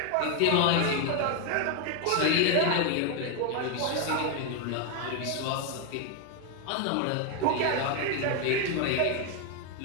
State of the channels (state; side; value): different; both; correlation 0.01